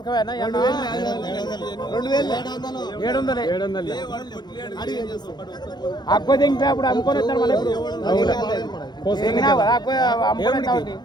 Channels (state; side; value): late; right; 0.21 ms